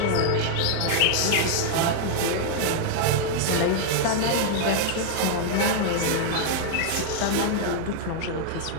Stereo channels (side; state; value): both; different; correlation -0.01